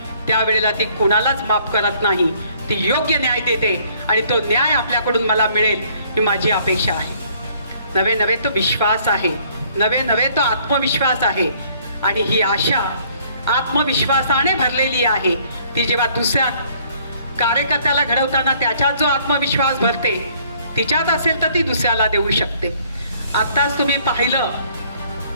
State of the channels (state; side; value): inverted; both; correlation -0.61